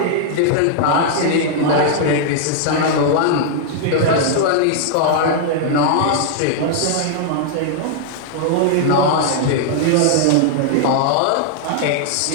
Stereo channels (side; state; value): both; different; correlation -0.01